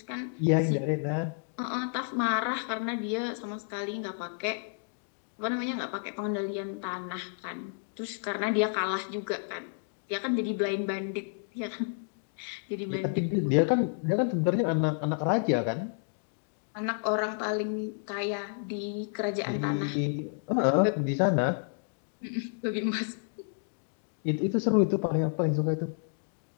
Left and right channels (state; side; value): silent; right; digital silence